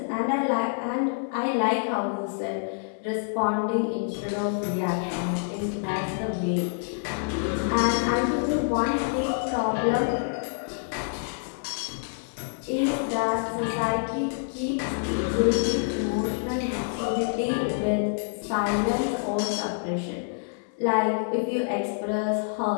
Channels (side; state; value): right; silent; digital silence